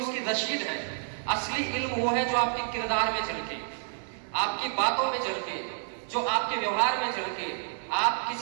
उसकी रसीद है। असली इल्म वो है जो आपके किरदार में झलके, आपकी बातों में झलके, जो आपके व्यवहार में झलके। आप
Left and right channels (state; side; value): silent; left; digital silence